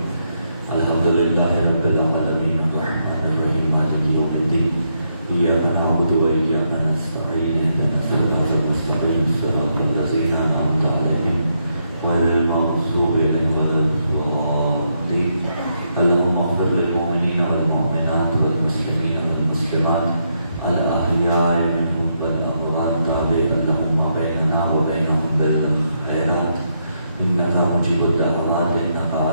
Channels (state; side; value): inverted; both; correlation -0.78